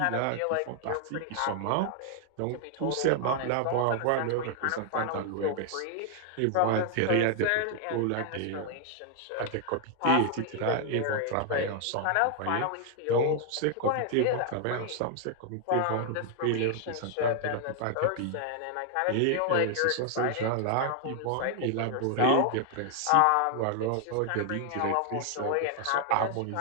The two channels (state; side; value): different; both; correlation 0.00